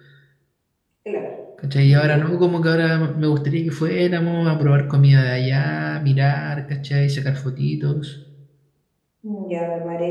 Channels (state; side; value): identical; both; correlation 1.00